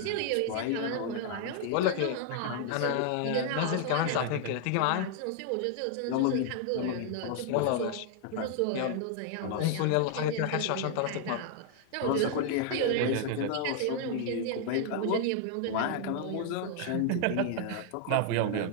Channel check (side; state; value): both; different; correlation 0.00